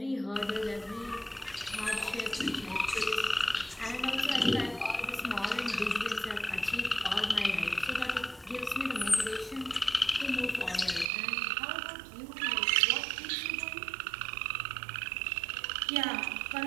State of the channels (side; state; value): left; drops out; at 11.1 s